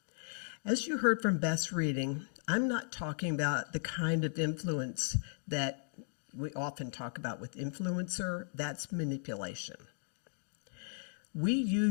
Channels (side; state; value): right; silent; digital silence